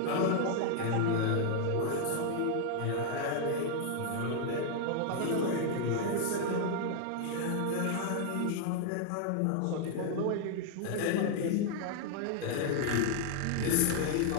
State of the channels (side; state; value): both; different; correlation 0.00